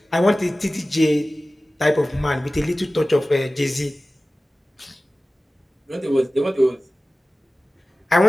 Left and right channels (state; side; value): normal; both; correlation 0.96